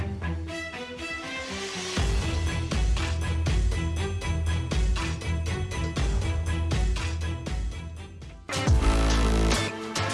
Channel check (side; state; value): both; identical; correlation 1.00